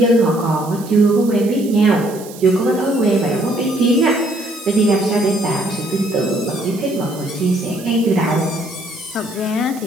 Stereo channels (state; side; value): noise; right; hiss, 18 dB below the sound